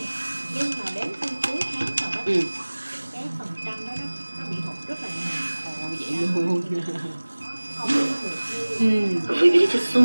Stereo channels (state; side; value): inverted; both; correlation -1.00